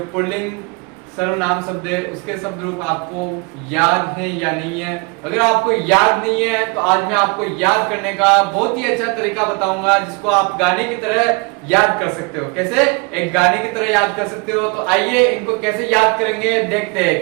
पुल्लिंग सर्वनाम शब्द है उसके शब्द रूप आपको याद है या नहीं है। अगर आपको याद नहीं है तो आज मैं आपको याद करने का बहुत ही अच्छा तरीका बताऊंगा जिसको आप गाने की तरह याद कर सकते हो। कैसे एक गाने की तरह याद कर सकते हो, तो आइए इनको कैसे याद करेंगे देखते हैं।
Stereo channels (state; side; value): quieter; left; 29.9 dB